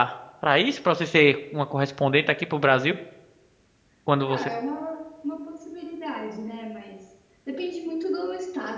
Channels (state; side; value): identical; both; correlation 1.00